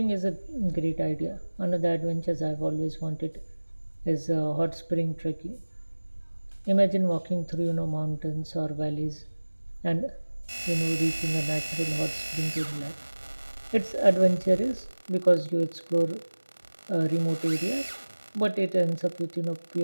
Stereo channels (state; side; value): inverted; both; correlation -1.00